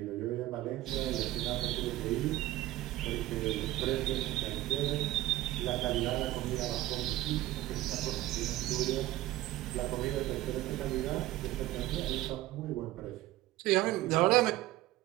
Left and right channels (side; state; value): left; quieter; 16.0 dB